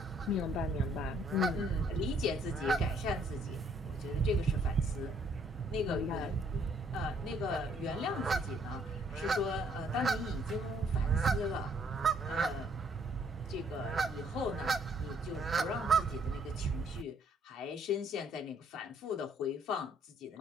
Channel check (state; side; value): normal; both; correlation 0.65